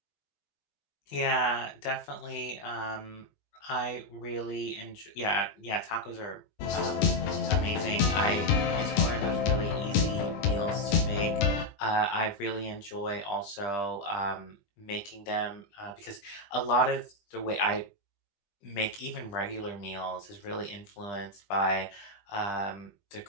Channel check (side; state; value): right; late; 20 ms